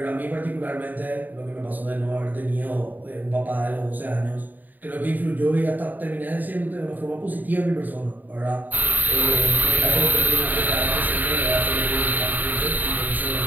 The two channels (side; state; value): left; late; 0.087 ms